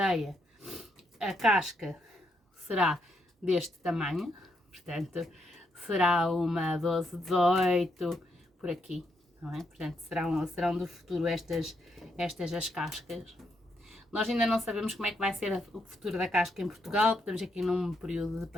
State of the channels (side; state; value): both; normal; correlation 0.78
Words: a casca será deste tamanho, portanto será uma 12, 18, por aqui. Não é? Portanto, serão do futuro estas as cascas. Nós ainda não sabemos como é que vai ser o futuro da casca em Portugal, estamos aqui num período de